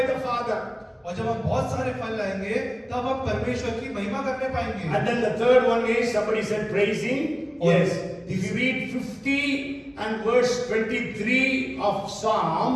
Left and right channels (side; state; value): both; identical; correlation 1.00